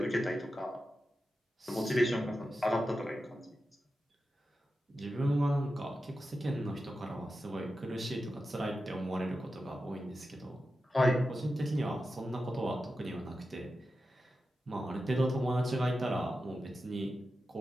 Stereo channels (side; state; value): both; normal; correlation 0.91